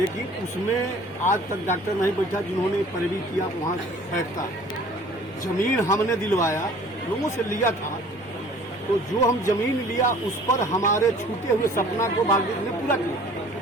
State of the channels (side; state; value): both; normal; correlation 0.50